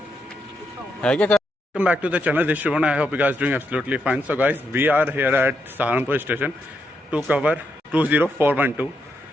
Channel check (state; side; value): normal; both; correlation 0.81